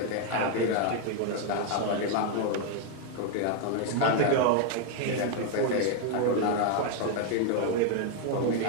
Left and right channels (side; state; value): both; different; correlation 0.00